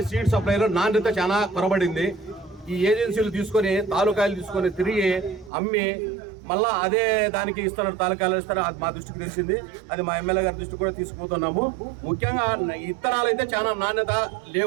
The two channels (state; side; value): drops out; left; at 5.5 s